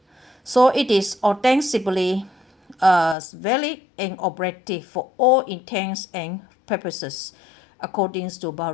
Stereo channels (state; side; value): drops out; right; at 3.2 s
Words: So it is ostensibly valid and operative for all intents and purposes, according to